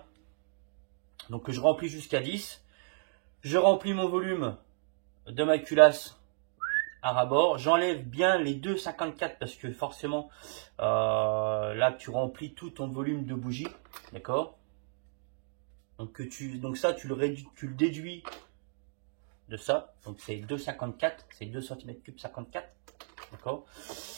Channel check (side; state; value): left; silent; digital silence